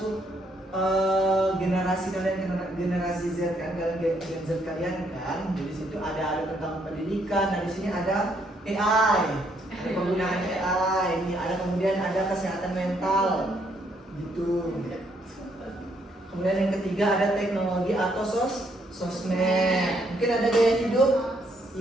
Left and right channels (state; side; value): normal; both; correlation 0.72